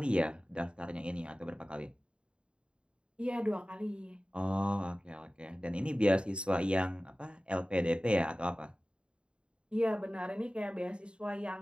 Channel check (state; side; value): late; left; 0.054 ms